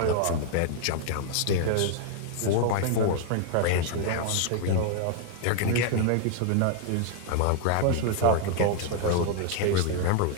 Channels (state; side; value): different; both; correlation 0.00